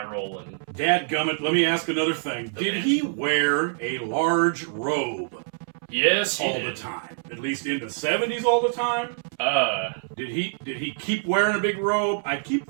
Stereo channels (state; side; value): silent; left; 62 dB below the other